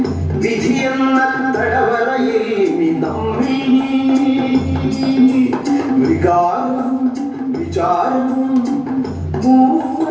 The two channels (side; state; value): both; identical; correlation 1.00